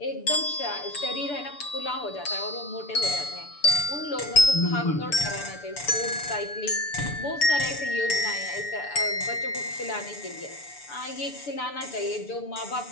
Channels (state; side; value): late; right; 6.9 ms